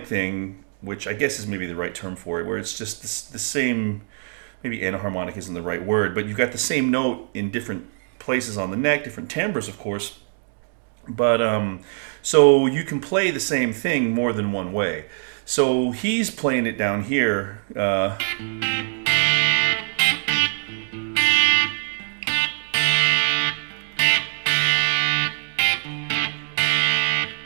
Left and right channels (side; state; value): left; silent; digital silence